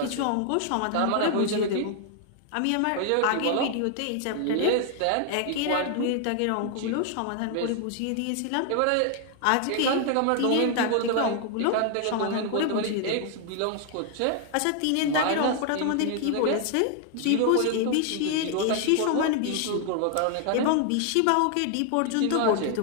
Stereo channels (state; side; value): different; both; correlation 0.00